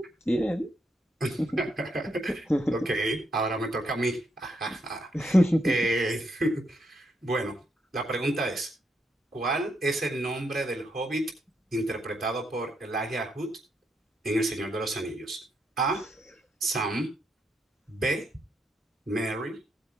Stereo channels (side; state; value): both; normal; correlation 0.78